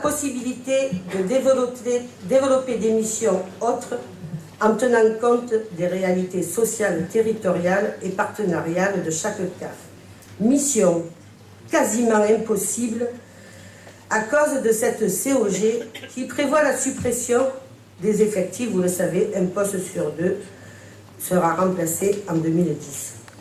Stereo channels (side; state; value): both; identical; correlation 1.00